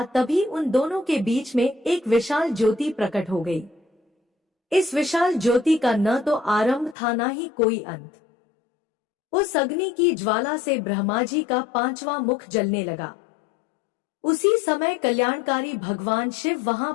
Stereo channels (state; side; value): drops out; right; at 7.0 s